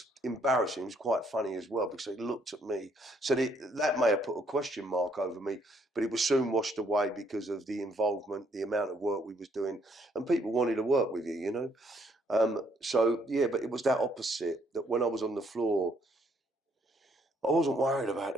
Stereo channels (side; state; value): both; normal; correlation 0.69